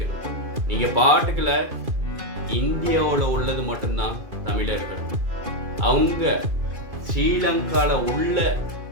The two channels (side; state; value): left; late; 2.5 ms